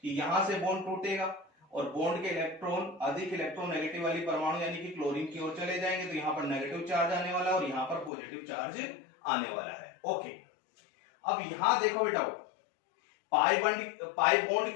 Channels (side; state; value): right; drops out; at 8.1 s